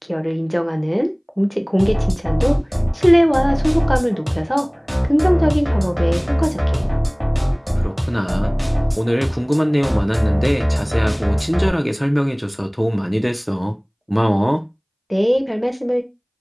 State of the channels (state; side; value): identical; both; correlation 1.00